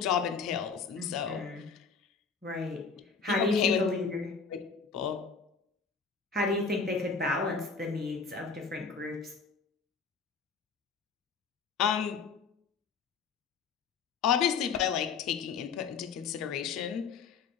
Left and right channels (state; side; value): quieter; right; 5.3 dB